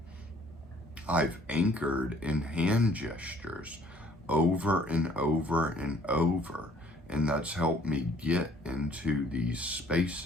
I've anchored in hand gestures over and over and over. And that's helped me get into these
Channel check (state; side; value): normal; both; correlation 0.59